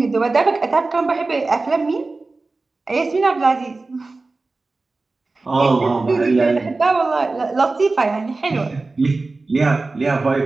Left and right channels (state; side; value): quieter; left; 3.5 dB